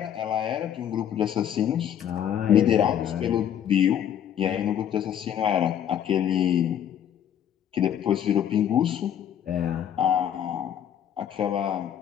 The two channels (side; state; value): right; quieter; 9.7 dB